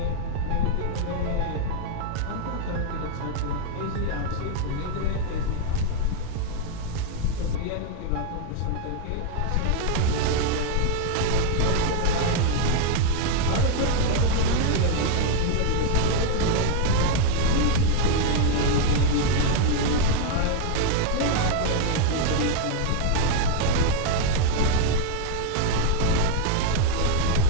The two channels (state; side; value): different; both; correlation 0.01